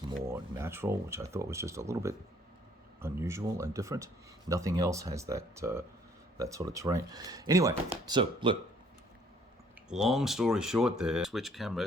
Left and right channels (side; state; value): both; normal; correlation 0.61